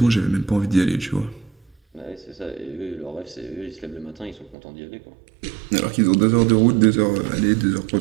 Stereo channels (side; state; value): left; drops out; at 4.5 s